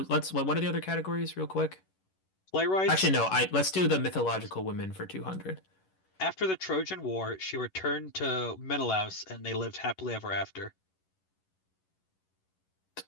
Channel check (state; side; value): late; right; 11 ms